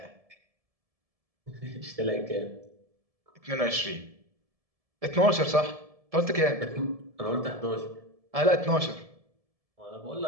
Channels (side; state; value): left; late; 1.7 ms